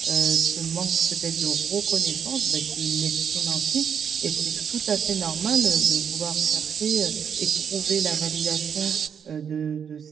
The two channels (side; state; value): left; quieter; 7.5 dB